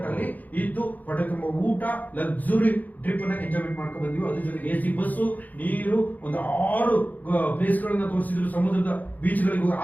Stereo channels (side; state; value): right; late; 0.081 ms